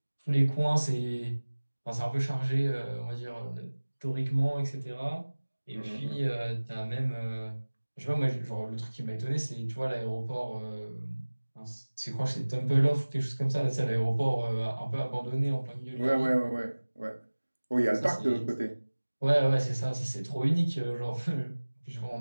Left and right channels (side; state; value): both; inverted; correlation -1.00